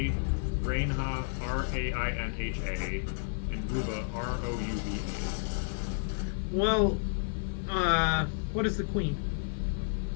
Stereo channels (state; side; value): silent; right; 57 dB below the other